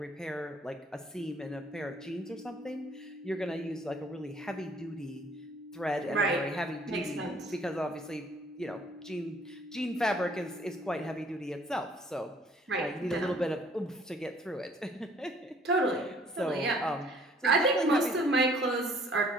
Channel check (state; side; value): normal; both; correlation 0.58